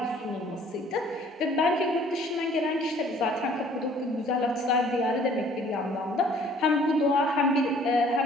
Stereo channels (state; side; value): normal; both; correlation 0.56